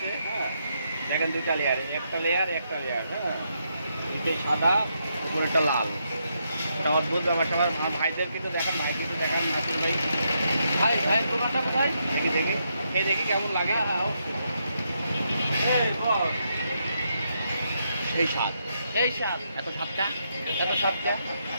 হ্যাঁ দেখেন 2টা লেয়ার, একটা লেয়ার একটা লেয়ার। হ্যাঁ নিচে সাদা উপরে একটা লাল। ওটা অদ্ভুত ব্যাপারটা। আমার ভাইদের কিন্তু দেখান, ভাইদেরকে দেখান নাসির ভাই। ভাই ভাইয়ের দোকানটা কোথায়? দেখি দেখি খেয়ে দেখি কেমন লাগে। সেই স্বাদ, সেই স্বাদ, এত স্বাদটা, এত স্বাদটা।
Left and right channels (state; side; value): inverted; both; correlation -0.79